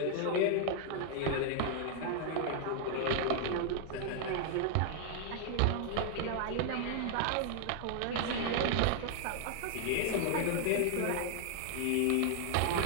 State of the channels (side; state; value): both; different; correlation 0.00